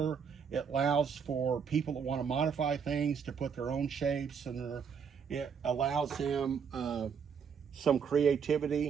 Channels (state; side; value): quieter; left; 6.7 dB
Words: It allows for people that want to modify things to put their own shapes, and it allows them some